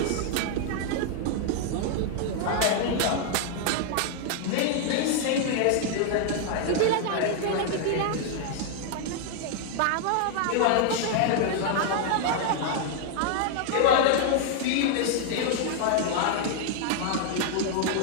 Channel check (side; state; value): both; different; correlation 0.00